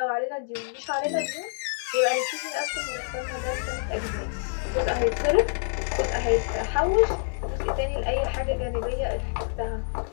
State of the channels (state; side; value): silent; right; digital silence